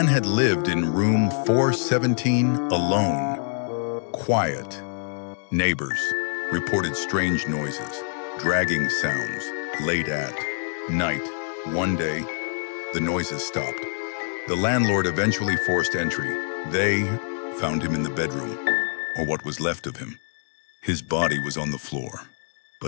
had lived in room 417 alone. Quiet. Neighbors reported strange noises, dragging sounds, late at night. One day, the noises stopped. The landlord eventually forced entry. They found him in the bedroom, or what was left of him. His body was on the floor,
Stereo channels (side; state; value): right; silent; digital silence